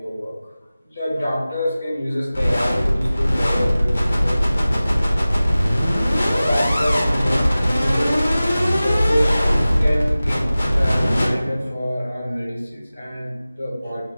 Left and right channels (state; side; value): inverted; both; correlation -0.97